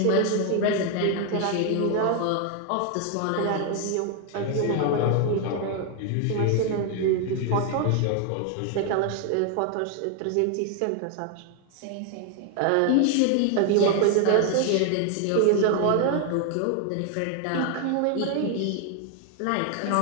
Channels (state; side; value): different; both; correlation 0.01